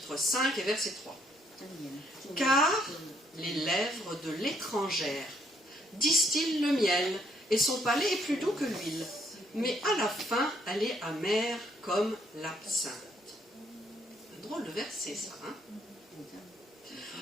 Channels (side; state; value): both; normal; correlation 0.68